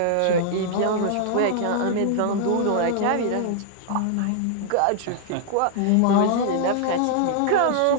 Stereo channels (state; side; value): different; both; correlation -0.01